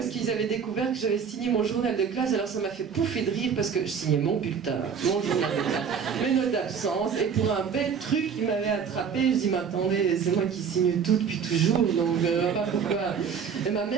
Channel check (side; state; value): left; quieter; 6.7 dB